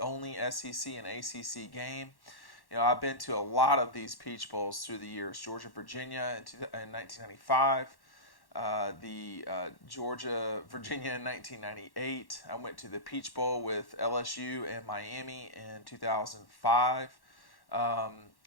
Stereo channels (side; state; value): right; late; 1.1 ms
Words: SEC and ACC game. You know, I've been to a lot of these Peach Bowls through the years. Georgia-Virginia in 1995, Georgia-Virginia in 1998. I went to the Peach Bowl with LSU and Miami in 2005.